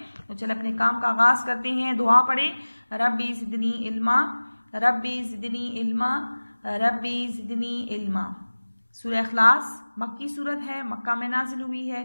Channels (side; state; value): both; inverted; correlation -1.00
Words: तो चल अपने काम का आगाज करते हैं। दुआ पढ़े, रब्बी ज़िदनी इल्मा, रब्बी ज़िदनी इल्मा, रब्बी ज़िदनी इल्मा। सूरह इखलास मक्की सूरत है, मक्का में नाजिल हुई है।